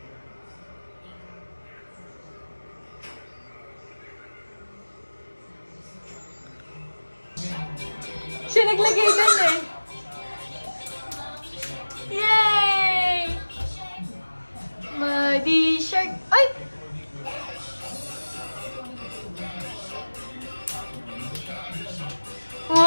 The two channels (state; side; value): inverted; both; correlation -1.00